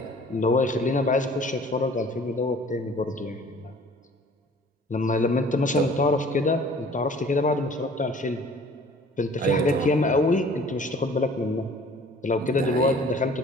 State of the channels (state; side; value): normal; both; correlation 0.51